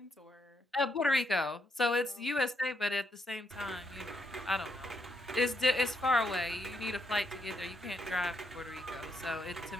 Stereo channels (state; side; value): normal; both; correlation 0.78